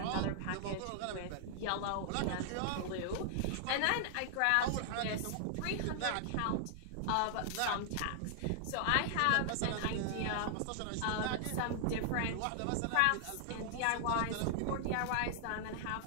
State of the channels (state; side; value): different; both; correlation -0.01